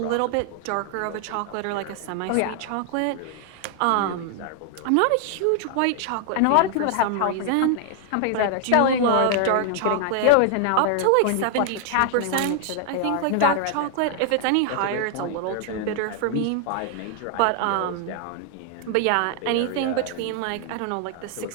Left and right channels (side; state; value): both; different; correlation 0.00